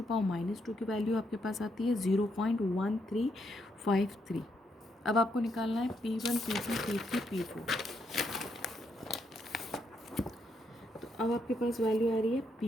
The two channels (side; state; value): both; normal; correlation 0.78